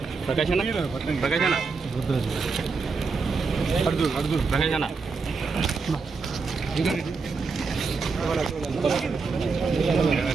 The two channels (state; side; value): quieter; left; 4.6 dB